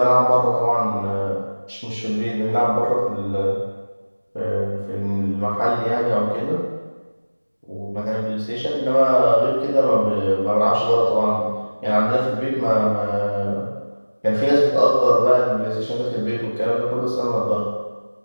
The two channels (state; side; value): inverted; both; correlation -1.00